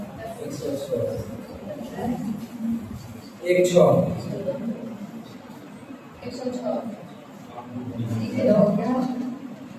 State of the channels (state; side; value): identical; both; correlation 1.00